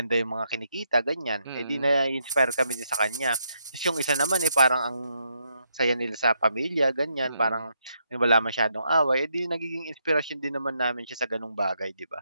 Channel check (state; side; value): inverted; both; correlation -0.78